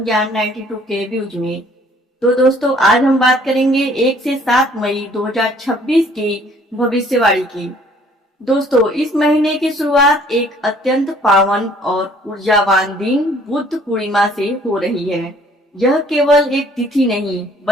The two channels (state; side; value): normal; both; correlation 0.58